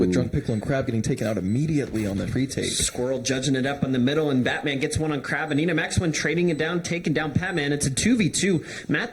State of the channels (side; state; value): both; identical; correlation 1.00